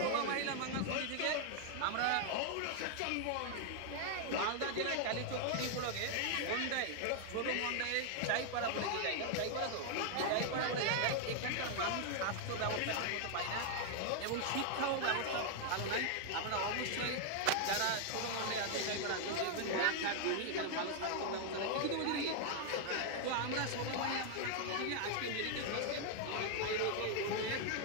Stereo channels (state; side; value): different; both; correlation 0.00